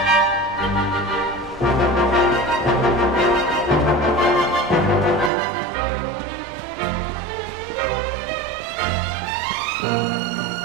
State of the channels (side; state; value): left; drops out; at 5.3 s